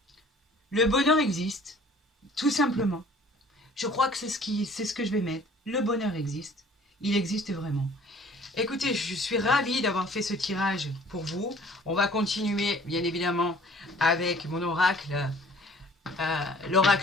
le bonheur existe, tout simplement. Je crois que c'est ce que je vais mettre. Le bonheur existe. Il existe vraiment. Écoutez, je suis ravie d'avoir fait ce tirage pour vous. On va continuer, bien évidemment, avec mon oracle,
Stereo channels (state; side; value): normal; both; correlation 0.52